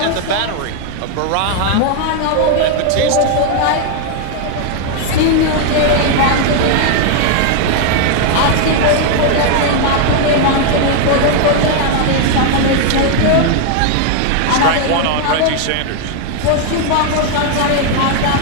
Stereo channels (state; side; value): different; both; correlation 0.00